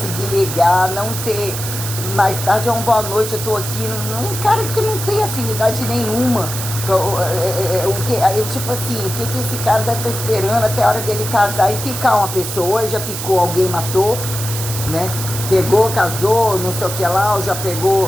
ligar, não ter, mais tarde é uma boa noite, eu tô aqui, um cara que não tem afinidade nenhuma. Tipo assim, o que esse cara deve estar esperando até a hora dele casar e picar uma pessoa? Ou já picou alguém, matou, né? Pegou, casou, não sei o que lá, ou já pegou,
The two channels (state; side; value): noise; right; hiss, 6 dB below the sound